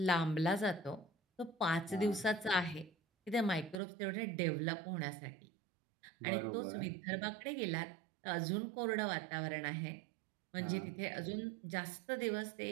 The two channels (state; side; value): drops out; left; at 3.8 s